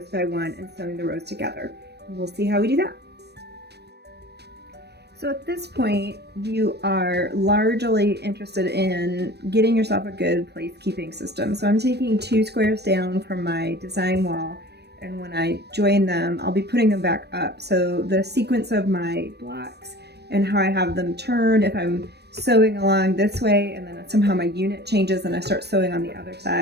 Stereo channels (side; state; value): left; late; 0.48 ms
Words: by one and sewing the rows together. And we'll see how we do that. So at this point, you are largely interested in getting yourself a good placekeeping system. So I'm taking 2 squares down from my design wall, and when I join them, I'll be putting them back up. So the sequence of my blocks and how I have them turned, if I'm sewing along this way and then somehow my unit changes and I start sewing on the other